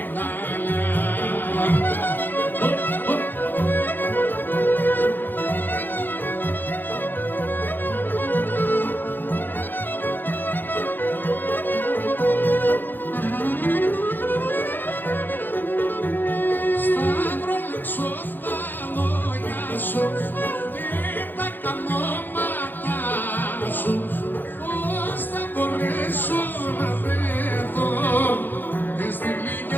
Πώς θα μπορέσω να βρεθώ στη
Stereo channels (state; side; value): late; right; 0.091 ms